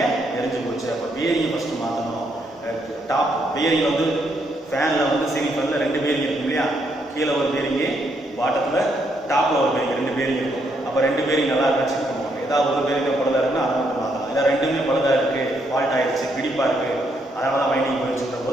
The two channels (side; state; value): both; normal; correlation 0.75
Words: எரிஞ்சு போச்சு. அப்போ பேரிங்கை ஃபஸ்ட்டு மாற்றணும். டாப் பேரிங் வந்து ஃபேனில் வந்து சீலிங் ஃபேனில் 2 பேரிங் இருக்கும் இல்லையா? கீழே ஒரு பேரிங்கு, பாட்டத்தில் டாப்பில் ஒரு பேரிங், 2 பேரிங் இருக்கும். 2 பேரிங் நல்லா இருக்குன்னு செக் பண்ணுவாங்க. ஏதாவது ஒரு பேரிங் பழுதாக இருக்குன்னா அதை மட்டும் மாற்றலாம். இல்லை ரெண்டுமே பழுதாக இருக்குது, ஃபால்ட் ஆகிடுச்சு, பிடிப்பாக இருக்குது, அதனால தான் வைண்டிங் போயிடுச்சுன்ற